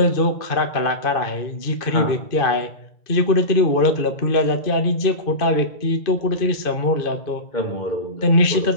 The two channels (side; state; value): right; late; 2.5 ms